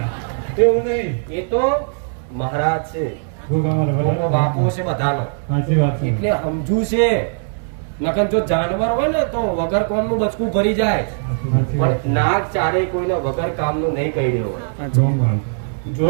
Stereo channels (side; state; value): left; silent; digital silence